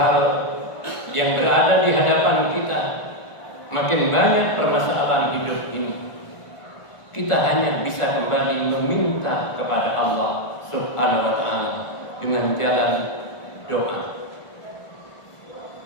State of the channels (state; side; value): late; right; 1.4 ms